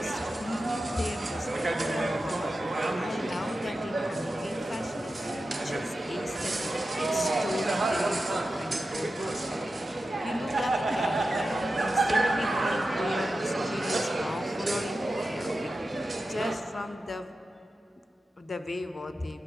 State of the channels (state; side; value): normal; both; correlation 0.92